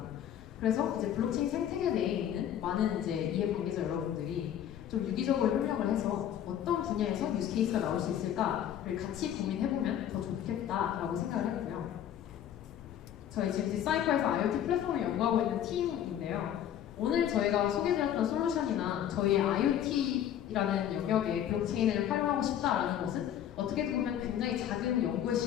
그래서 이제 블록체인 생태계 내에 있는 많은 이제 이해 관계자 여러분들이 좀 유기적으로 협력을 해서 어떤 분야에서 유스 케이스가 나올 수 있을까를 같이 고민해보면 더 좋겠다라고 생각을 했고요. 저희 지금 디사이퍼에서 IoT 플랫폼을 연구하고 있는 팀인데요. 오늘 저희가 소개드렸던 솔루션이나 저희의 IoT의 연구이라는 영역에 블록체인을 활용하고 싶다라는 것은 어떻게 보면 굉장히 작은 연구의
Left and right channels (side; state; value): right; quieter; 10.4 dB